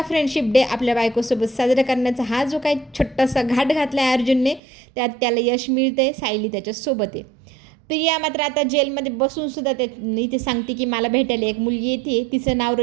फ्रेंडशिप डे आपल्या बायकोसोबत साजरा करण्याचा हा जो काही छोटासा घाट घातला आहे अर्जुनने, त्यात त्याला यश मिळतं आहे. सायली त्याच्यासोबत आहे. प्रिया मात्र आता जेलमध्ये बसून सुद्धा त्या इथे सांगते की मला भेटायला एक मुलगी येते, तिचं नाव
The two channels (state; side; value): drops out; left; at 4.6 s